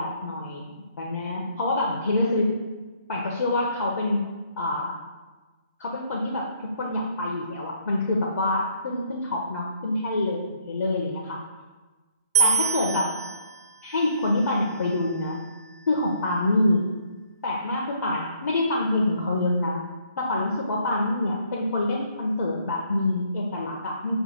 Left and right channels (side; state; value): both; inverted; correlation -0.65